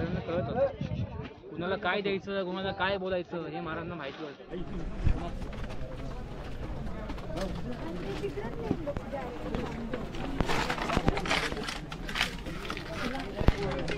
कळत होतं. कुणाला काय द्यायचं, कुणाला काय बोलायचं हे महाराजांना माहिती होतं.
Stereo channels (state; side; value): identical; both; correlation 1.00